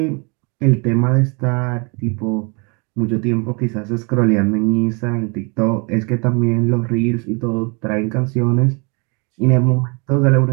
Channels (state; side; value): quieter; left; 32.4 dB